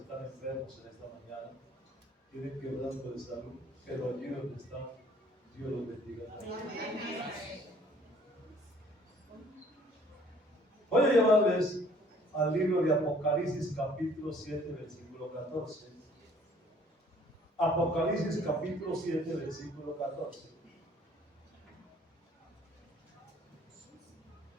enfermos en esta mañana, tienen quebranto de salud, pero allí donde están, Dios los bendiga. Voy a llevarles al libro de Apocalipsis capítulo 7, versículo 14. Apocalipsis capítulo 7, versículo 14.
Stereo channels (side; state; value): both; normal; correlation 0.57